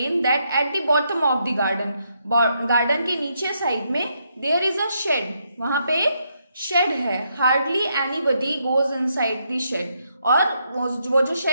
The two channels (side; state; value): both; inverted; correlation -0.77